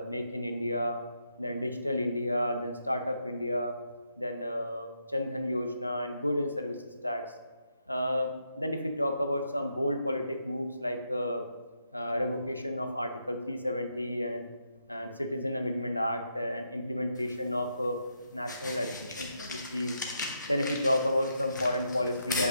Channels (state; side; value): inverted; both; correlation -0.80